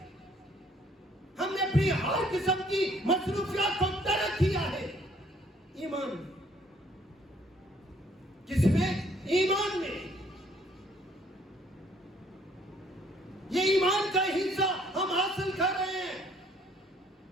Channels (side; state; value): both; normal; correlation 0.63